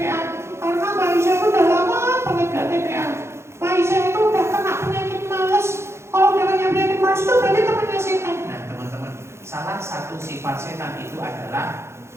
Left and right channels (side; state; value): left; late; 0.13 ms